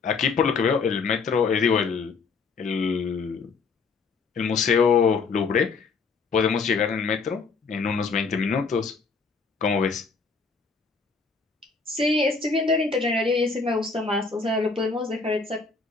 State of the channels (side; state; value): right; quieter; 4.8 dB